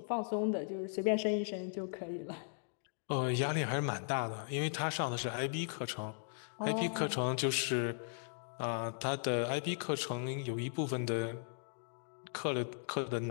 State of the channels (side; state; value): right; silent; digital silence